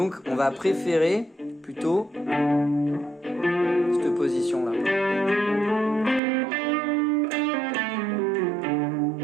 on va préférer plutôt cette position là.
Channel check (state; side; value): drops out; left; at 6.2 s